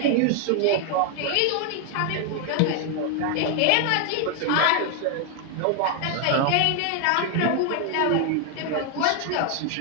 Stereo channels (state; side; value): different; both; correlation 0.00